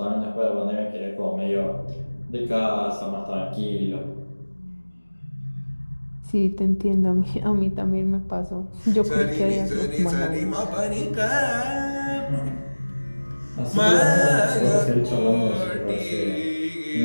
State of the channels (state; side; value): inverted; both; correlation -1.00